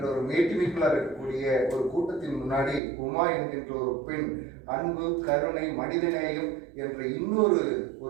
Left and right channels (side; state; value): left; drops out; at 2.8 s